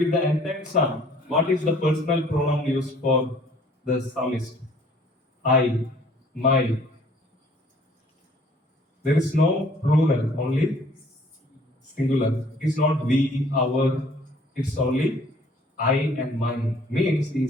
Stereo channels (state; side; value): normal; both; correlation 0.56